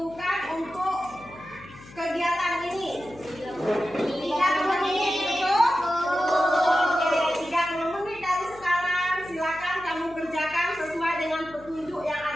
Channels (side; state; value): left; noise; hum, 20 dB below the sound